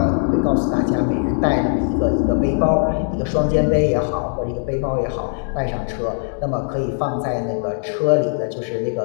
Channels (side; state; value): right; silent; digital silence